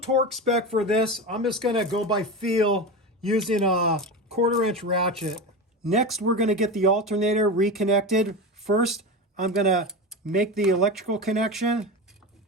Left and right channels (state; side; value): normal; both; correlation 0.23